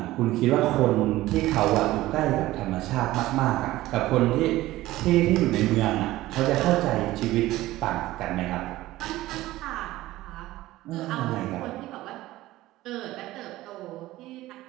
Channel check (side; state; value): left; quieter; 16.7 dB